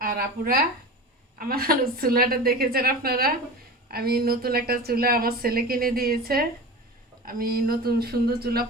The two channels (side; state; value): both; normal; correlation 0.31